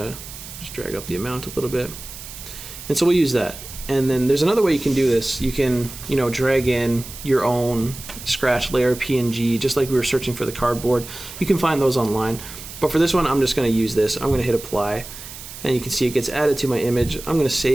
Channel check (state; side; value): noise; right; hiss, 13 dB below the sound